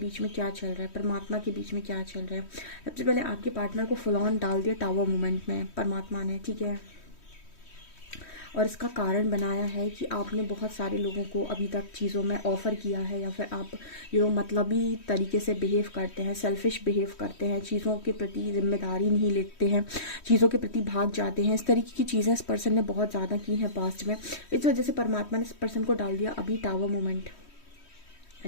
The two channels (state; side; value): late; right; 3.1 ms